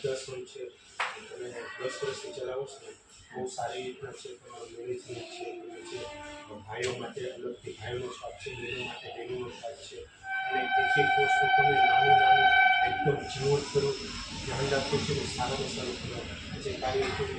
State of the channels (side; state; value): both; identical; correlation 1.00